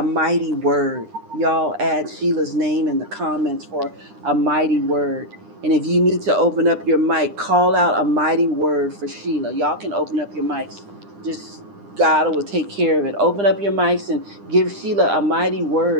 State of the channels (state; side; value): late; left; 9.9 ms